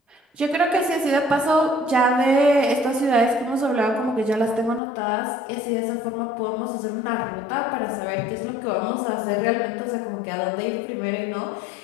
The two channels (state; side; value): drops out; right; at 4.8 s